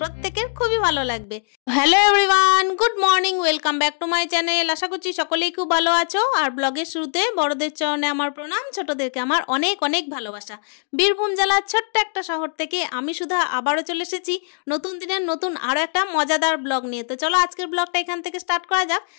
খুবই ভালো লাগবে। Hello everyone, good morning, welcome back to my channel. আশা করছি সকলেই খুব ভালো আছো। আর ব্লগের শুরুতে বড়দের চরণে আমার প্রণাম, ছোটদেরকে আমার অনেক অনেক ভালোবাসা। বীরভূম জেলার ছোট্ট একটা শহর থেকে আমি সুধা আবারও চলে এসেছি নতুন দিনের নতুন আরও একটা মজাদার ব্লগ নিয়ে। তো চলো আজকের ব্লগটা এখান থেকে স্টার্ট করা যাক।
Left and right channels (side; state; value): right; silent; 65 dB below the other